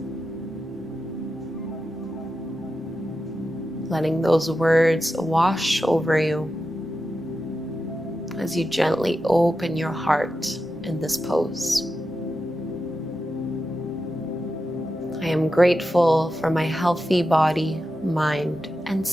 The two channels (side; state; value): both; normal; correlation 0.90